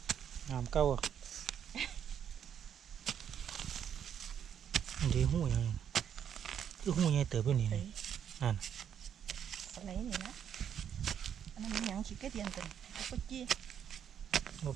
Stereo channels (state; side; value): quieter; left; 8.8 dB